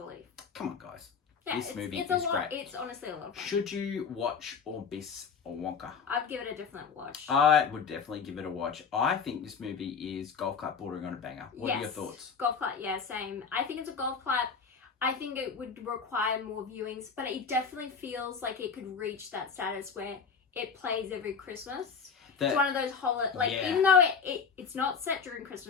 Come on, guys. Yeah, this movie is great. It's honestly a lot of fun. Should you watch or miss a Wonka? I'd give it a different watch. I would definitely give it a watch. I think this movie is golf clap bordering on a banger. What are your thoughts? Golf clap, yeah, same. I think it's a golf clap. I think it would require more viewings, but it definitely feels like it could reach that status where it plays every Christmas. It's one of those even though it's not set during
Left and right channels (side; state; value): right; quieter; 5.8 dB